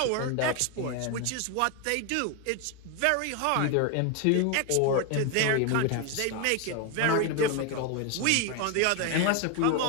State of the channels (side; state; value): both; different; correlation 0.01